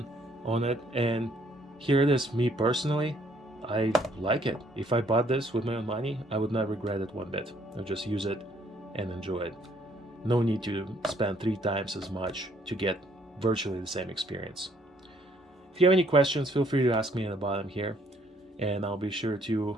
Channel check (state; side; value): normal; both; correlation 0.65